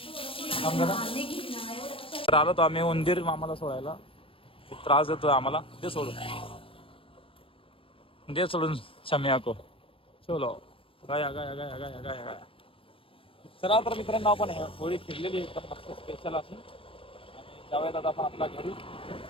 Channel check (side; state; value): right; late; 0.26 ms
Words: तर आलो तो आम्ही उंदीर मामाला सोडायला, त्रास देतोय आम्हाला, दे सोडून, दे सोडून शम्या को चलो गाया गाया गाया गाया गाया गाया। चला तर मित्रांनो आपण होळी फिरलेली एकदम मस्त स्पेशल अशी, आणि जाऊयात आता आपण आपल्या घरी।